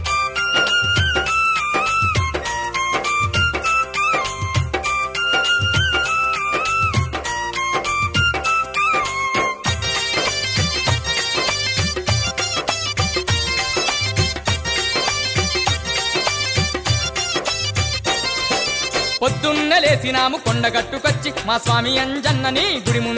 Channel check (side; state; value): both; identical; correlation 1.00